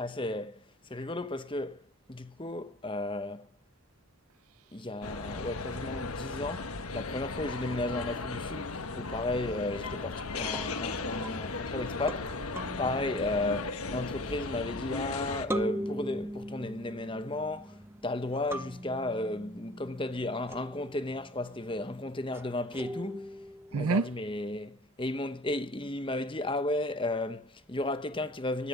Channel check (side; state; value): both; normal; correlation 0.44